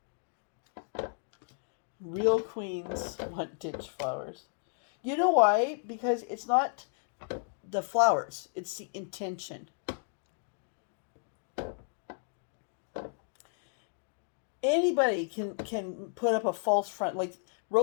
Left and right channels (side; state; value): right; silent; 56 dB below the other